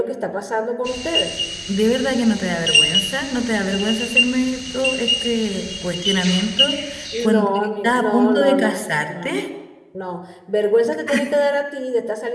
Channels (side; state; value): both; identical; correlation 1.00